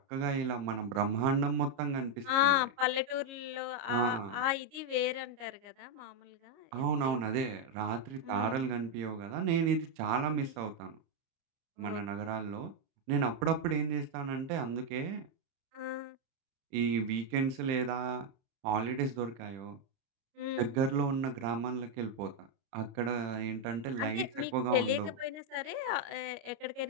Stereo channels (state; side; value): late; left; 29 ms